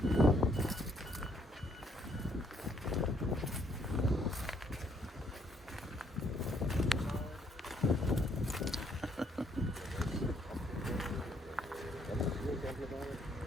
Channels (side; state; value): both; normal; correlation 0.68